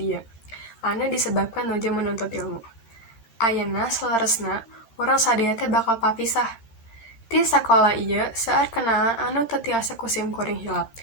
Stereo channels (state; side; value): late; right; 13 ms